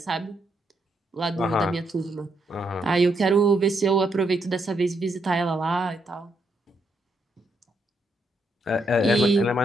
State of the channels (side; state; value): both; normal; correlation 0.78